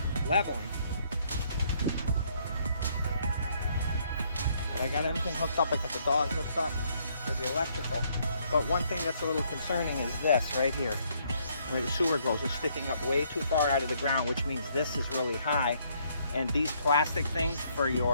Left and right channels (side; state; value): both; inverted; correlation -0.69